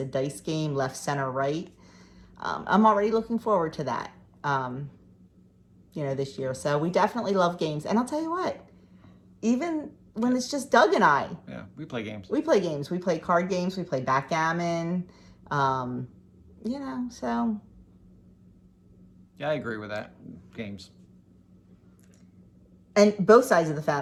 dice game, left, center, right. I'm already looking forward to that, this year. So we definitely love games. And I'll tell you what, even when it's just Doug and I. Yeah, we play games. We play games. We play card games. We play backgammon. So. Yeah, I agree with that. Games. And both sides of the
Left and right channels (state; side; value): identical; both; correlation 1.00